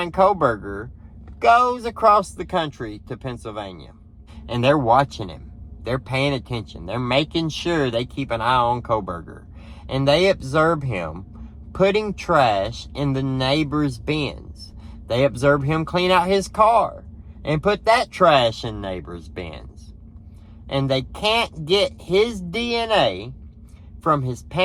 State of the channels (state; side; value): identical; both; correlation 1.00